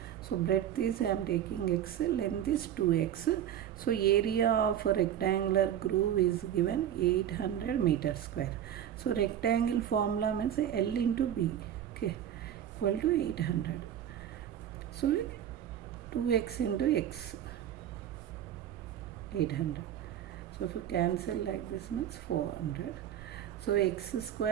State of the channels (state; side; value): quieter; left; 10.5 dB